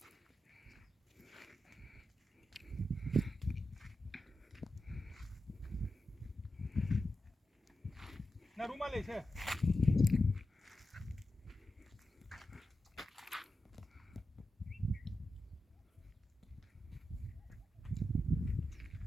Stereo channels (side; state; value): both; normal; correlation 0.90